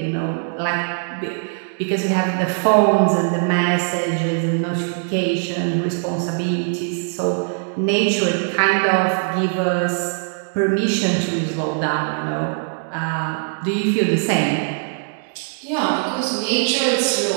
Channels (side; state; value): left; silent; digital silence